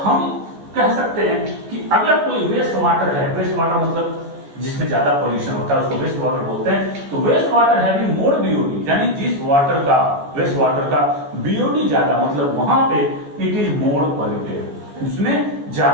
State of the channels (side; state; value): left; late; 14 ms